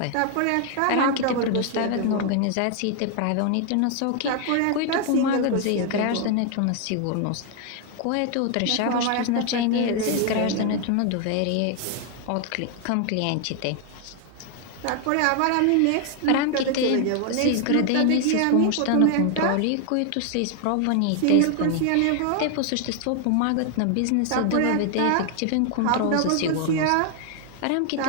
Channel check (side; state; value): both; different; correlation 0.00